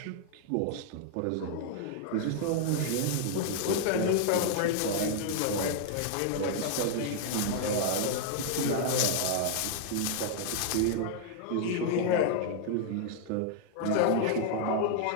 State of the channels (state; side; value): different; both; correlation 0.00